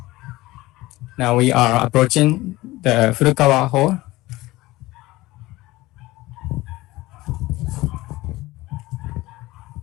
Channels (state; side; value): quieter; right; 18.9 dB